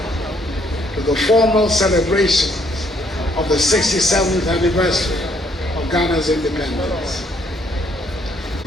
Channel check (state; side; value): normal; both; correlation 0.68